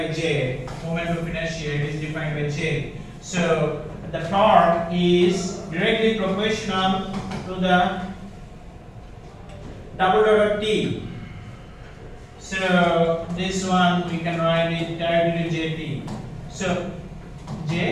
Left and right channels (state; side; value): identical; both; correlation 1.00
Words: J. Moment of inertia, it is defined by J. So the torque is directly proportional to the double dot of T. So this one we can write it directly to Jt. So